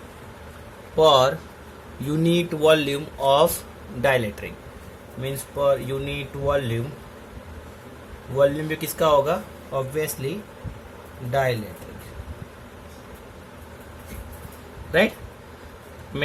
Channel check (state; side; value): identical; both; correlation 1.00